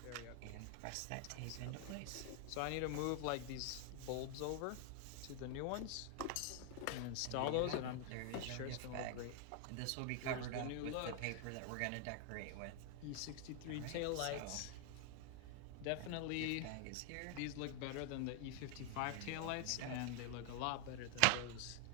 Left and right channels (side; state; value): both; different; correlation 0.00